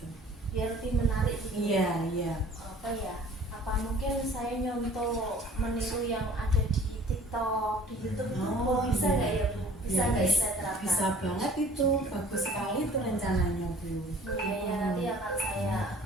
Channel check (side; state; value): both; normal; correlation 0.51